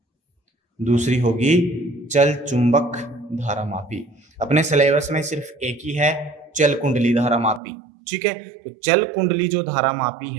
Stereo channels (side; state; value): left; drops out; at 7.6 s